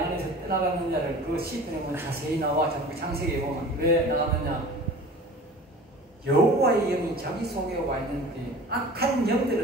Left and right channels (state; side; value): normal; both; correlation 0.41